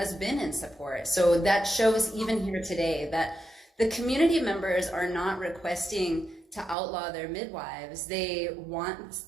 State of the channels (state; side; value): drops out; left; at 6.8 s